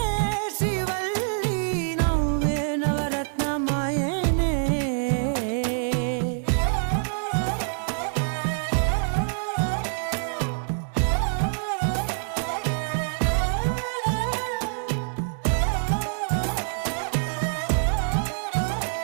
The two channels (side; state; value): left; silent; 61 dB below the other